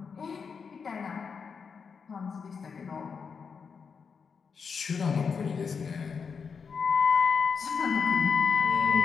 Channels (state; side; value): quieter; right; 5.8 dB